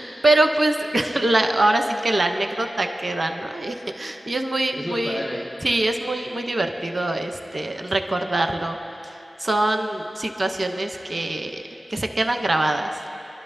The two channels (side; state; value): both; normal; correlation 0.94